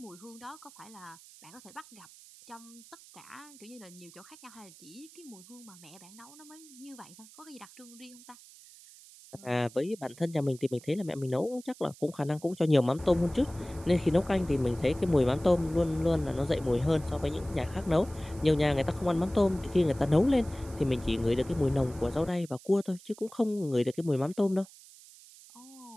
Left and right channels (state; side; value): noise; right; hiss, 21 dB below the sound